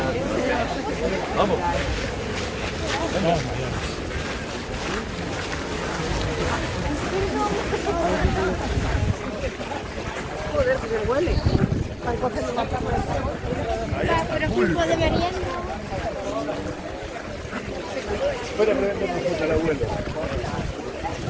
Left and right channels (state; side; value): identical; both; correlation 1.00